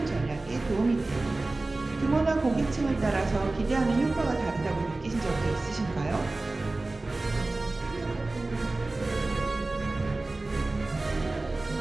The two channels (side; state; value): left; quieter; 3.1 dB